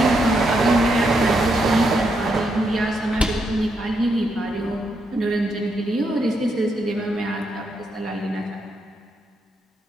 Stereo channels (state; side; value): normal; both; correlation 0.80